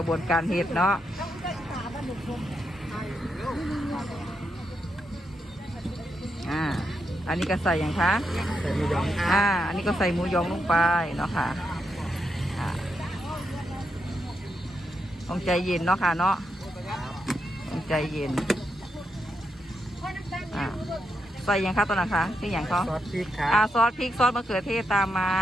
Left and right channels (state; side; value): normal; both; correlation 0.83